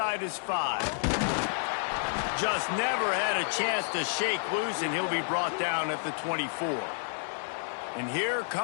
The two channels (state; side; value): silent; right; digital silence